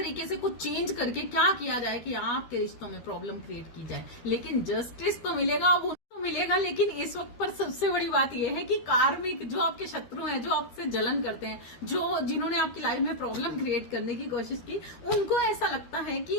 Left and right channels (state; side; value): late; right; 13 ms